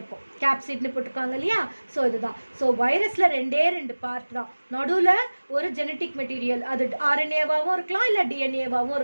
கேப்சிட்னு போட்டிருக்காங்க இல்லையா. ஸோ இதுதான். ஸோ வைரஸில் ரெண்டு பார்ட் தான். நடுவில் ஒரு ஜெனட்டிக் மெட்டீரியல், அது ஆர்என்ஏவாகவும் இருக்கலாம் இல்லை டிஎன்ஏவாகவும்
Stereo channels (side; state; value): both; inverted; correlation -1.00